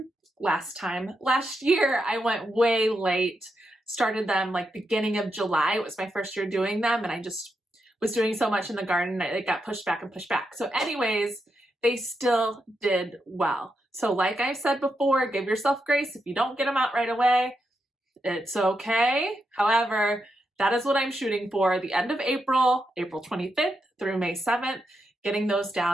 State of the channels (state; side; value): normal; both; correlation 0.84